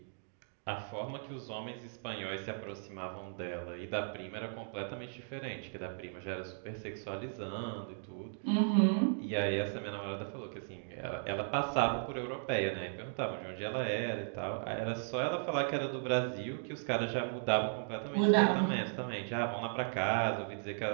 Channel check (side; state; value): left; silent; digital silence